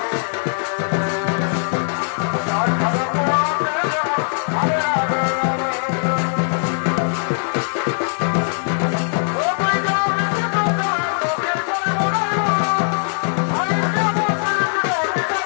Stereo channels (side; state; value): right; silent; digital silence